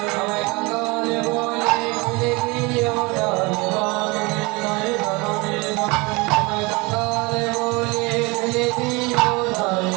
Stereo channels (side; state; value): left; quieter; 25.8 dB